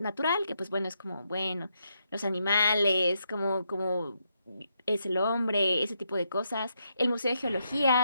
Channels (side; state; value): both; inverted; correlation -0.80